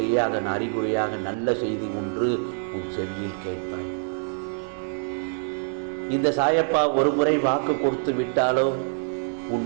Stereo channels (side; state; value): left; silent; digital silence